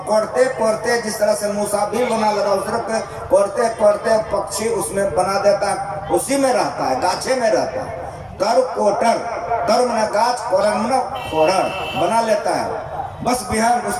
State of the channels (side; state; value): both; identical; correlation 1.00